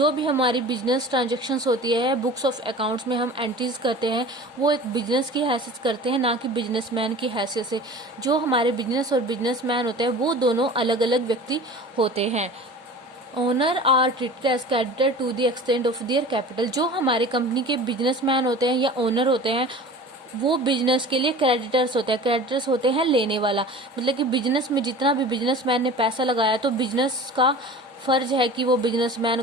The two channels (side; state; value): both; normal; correlation 0.39